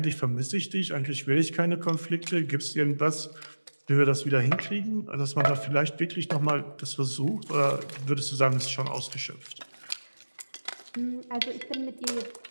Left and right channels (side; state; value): both; inverted; correlation -1.00